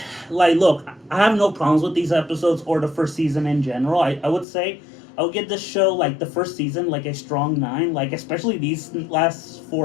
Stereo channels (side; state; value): right; drops out; at 4.5 s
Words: like, look, I have no problems with these episodes or the first season in general. I would say I would give this show, like, the first season, like, a strong 9. Like, especially these last